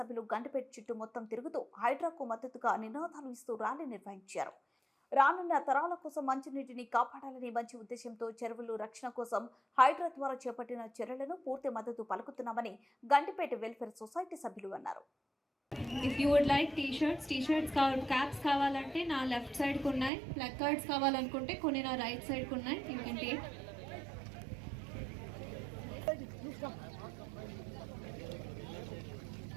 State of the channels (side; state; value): left; drops out; at 20.1 s